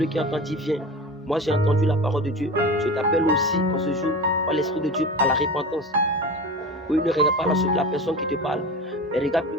qui entend dit viens. Moi j'ai entendu la parole de Dieu. Je t'appelle aussi en ce jour par l'Esprit de Dieu à la repentance. Oui, ne regarde pas la personne qui te parle, mais regarde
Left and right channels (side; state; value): both; normal; correlation 0.30